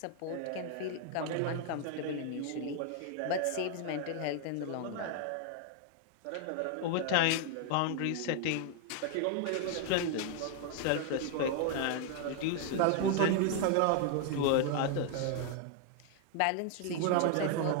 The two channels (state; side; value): different; both; correlation 0.00